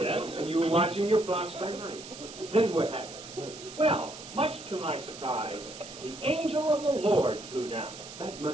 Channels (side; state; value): right; noise; hiss, 14 dB below the sound